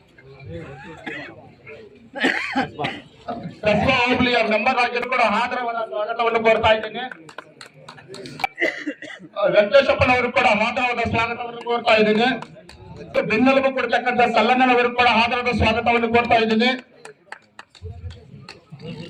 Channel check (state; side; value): identical; both; correlation 1.00